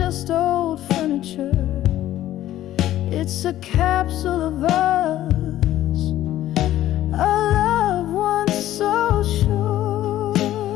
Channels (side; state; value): right; quieter; 13.5 dB